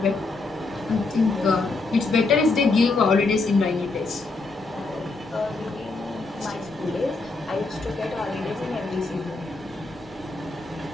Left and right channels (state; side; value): quieter; right; 3.6 dB